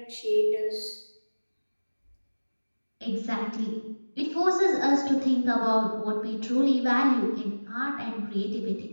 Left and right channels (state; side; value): inverted; both; correlation -1.00